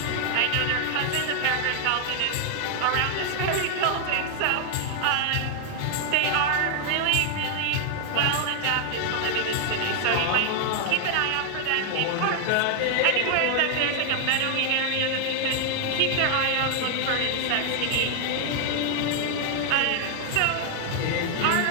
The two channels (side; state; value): both; different; correlation 0.00